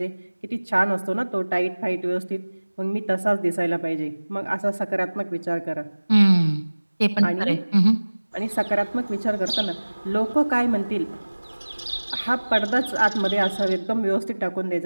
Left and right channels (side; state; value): both; inverted; correlation -1.00